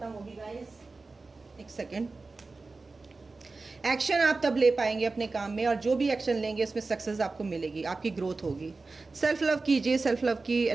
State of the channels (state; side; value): quieter; left; 3.7 dB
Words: होगी गाइस। एक सेकेंड, एक्शन आप तब ले पाएंगे अपने काम में, और जो भी एक्शन लेंगे उसमें सक्सेस आपको मिलेगी, आपकी ग्रोथ होगी। सेल्फ लव कीजिए, सेल्फ लव की